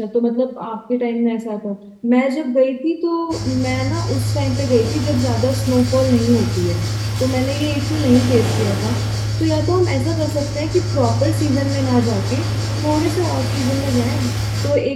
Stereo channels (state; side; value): identical; both; correlation 1.00